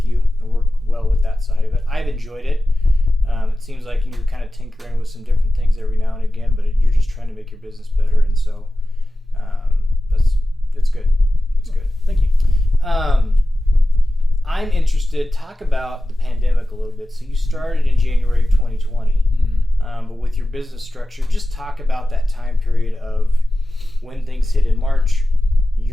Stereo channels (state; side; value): normal; both; correlation 0.94